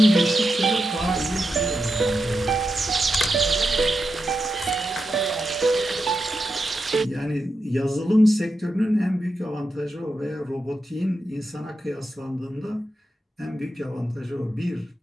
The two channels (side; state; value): both; normal; correlation 0.87